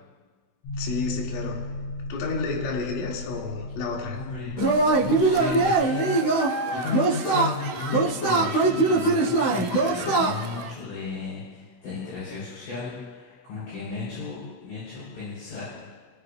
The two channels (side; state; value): right; late; 16 ms